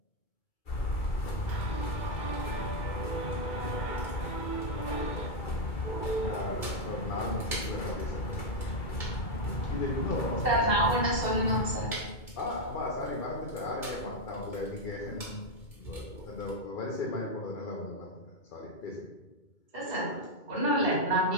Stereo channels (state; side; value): late; right; 2.2 ms